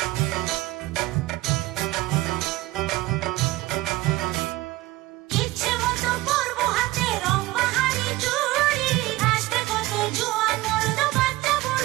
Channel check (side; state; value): left; quieter; 18.7 dB